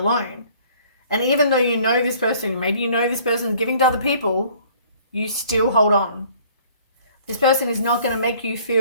And even though you know this person, maybe you know this person is giving to other people, you still hold on. This person is not going to make you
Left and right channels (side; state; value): both; inverted; correlation -0.56